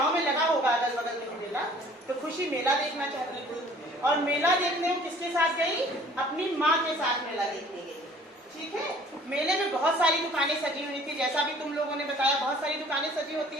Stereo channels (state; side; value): normal; both; correlation 0.53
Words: में लगा होगा अगल बगल में मेला, तो खुशी मेला देखना चाहती थी और मेला देखने वो किसके साथ गई, अपनी माँ के साथ मेला देखने गई। ठीक है, मेले में बहुत सारी दुकानें सजी हुई थी, जैसा भी तुम लोगों ने बताया बहुत सारी दुकानें सजी होती